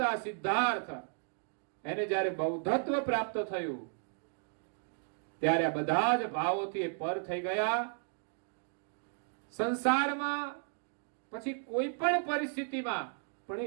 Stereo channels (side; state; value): left; silent; 55 dB below the other